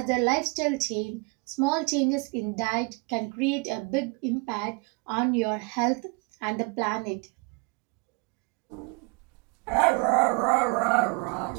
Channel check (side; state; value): left; quieter; 31.1 dB